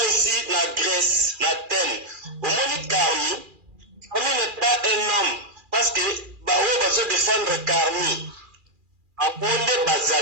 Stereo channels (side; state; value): left; late; 2.4 ms